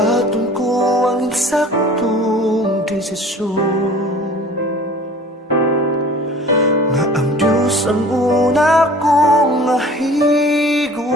ko ang eksaktong desisyon, nga ang Diyos ang una kong mahigugmaon.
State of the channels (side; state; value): both; normal; correlation 0.46